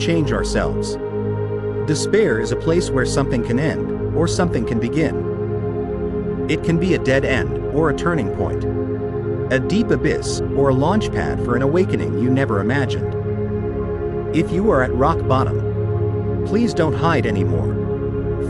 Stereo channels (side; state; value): both; identical; correlation 1.00